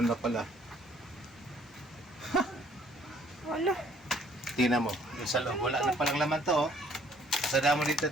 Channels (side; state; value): both; normal; correlation 0.61